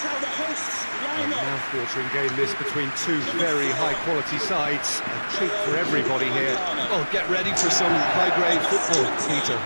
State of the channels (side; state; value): both; inverted; correlation -1.00